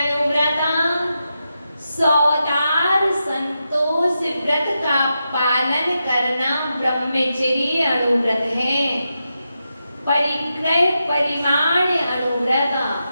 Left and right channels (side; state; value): both; inverted; correlation -0.87